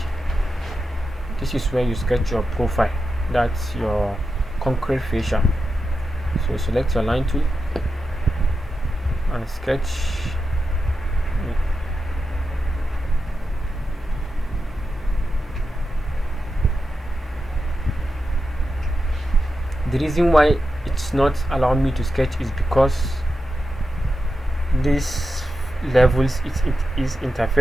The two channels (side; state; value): both; normal; correlation 0.89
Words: this is where you sketch your profile. That's your concrete fascia. So select your line tool and sketch. The reason why it's not allowing me to sketch is because this levels it is